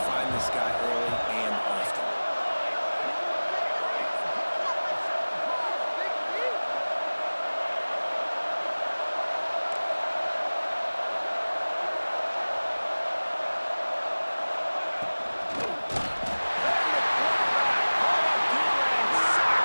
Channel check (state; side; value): inverted; both; correlation -1.00